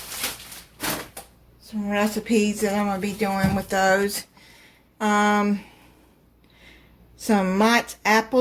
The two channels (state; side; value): identical; both; correlation 1.00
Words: Some recipes that I'm going to be doing with those. Some Mott's